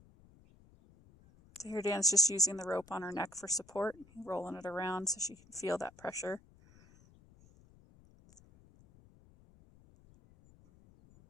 So here Dan's just using the rope on her neck for support, rolling it around so she can feel that pressure.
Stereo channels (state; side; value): noise; left; rumble, 26 dB below the sound